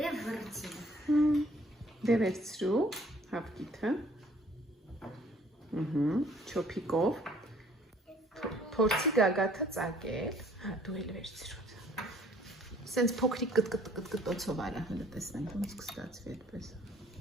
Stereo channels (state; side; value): normal; both; correlation 0.59